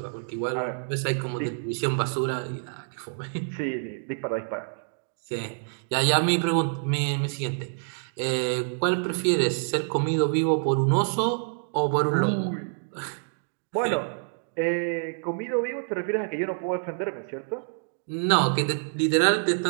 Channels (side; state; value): left; silent; digital silence